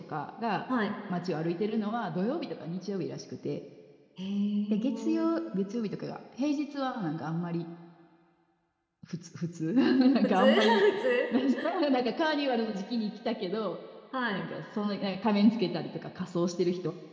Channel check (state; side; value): identical; both; correlation 1.00